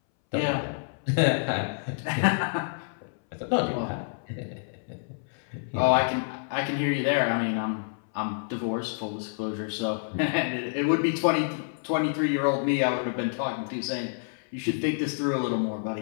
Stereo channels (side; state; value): right; silent; 59 dB below the other